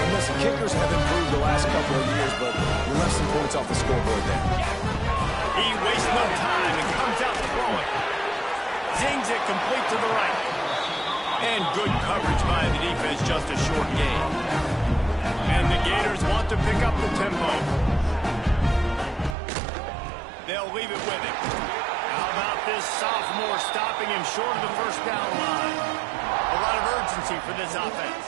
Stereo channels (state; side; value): drops out; left; at 19.4 s